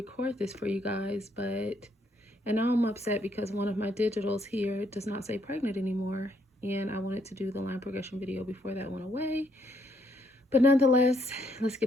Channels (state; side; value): normal; both; correlation 0.72